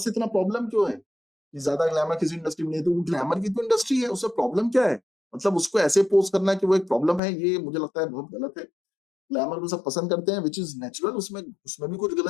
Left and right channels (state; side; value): drops out; right; at 7.2 s